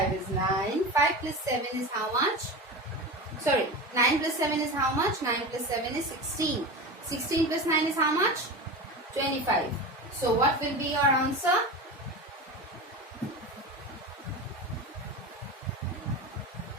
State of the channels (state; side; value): normal; both; correlation 0.26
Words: is 9. 5 plus 7 is how much? Sorry, 9 plus 7 is how much? 9 plus 7 is 16. 16 plus 9 is how much? 25. So what will be your answer?